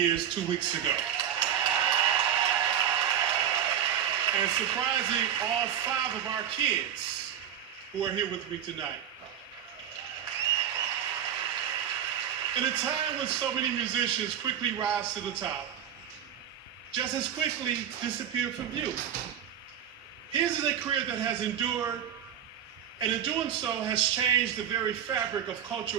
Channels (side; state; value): left; quieter; 9.4 dB